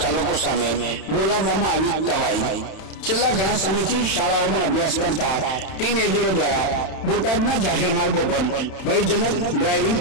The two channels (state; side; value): late; right; 31 ms